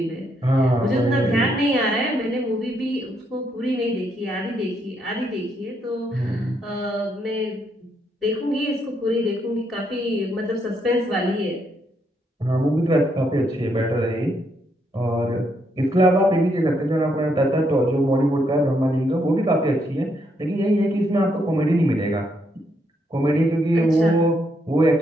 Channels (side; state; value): both; normal; correlation 0.76